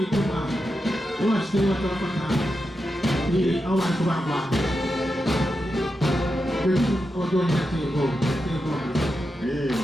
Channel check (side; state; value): both; normal; correlation 0.88